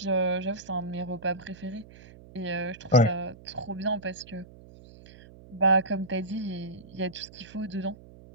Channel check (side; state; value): right; noise; hum, 20 dB below the sound